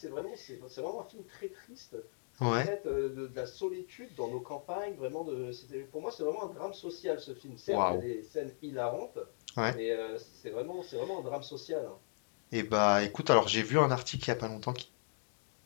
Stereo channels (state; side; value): silent; right; digital silence